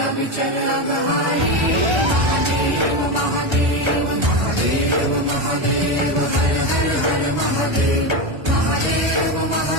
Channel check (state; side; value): late; left; 1.3 ms